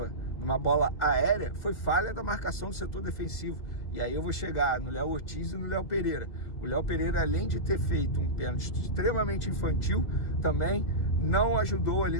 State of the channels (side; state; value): right; late; 2.0 ms